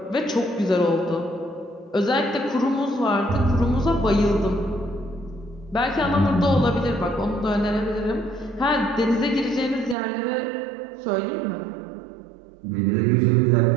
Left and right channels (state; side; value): drops out; left; at 10.0 s